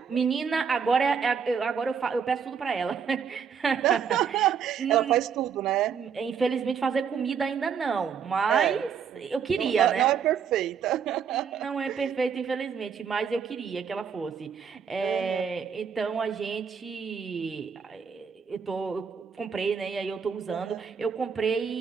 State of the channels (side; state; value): left; quieter; 6.9 dB